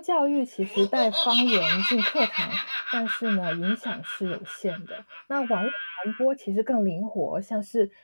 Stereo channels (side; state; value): both; inverted; correlation -1.00